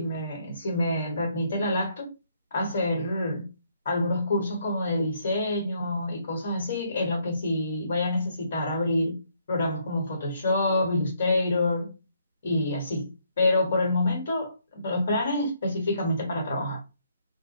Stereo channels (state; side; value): inverted; both; correlation -0.71